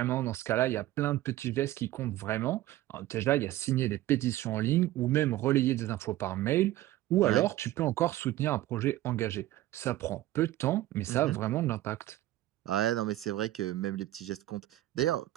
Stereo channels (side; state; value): left; quieter; 15.3 dB